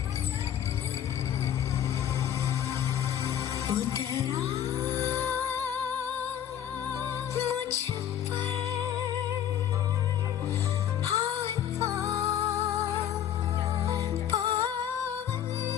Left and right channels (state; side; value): quieter; right; 10.2 dB